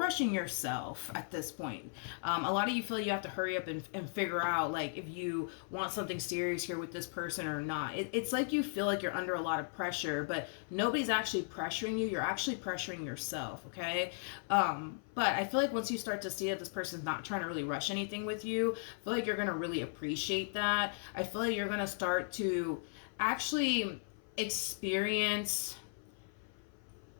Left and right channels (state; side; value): silent; right; 53 dB below the other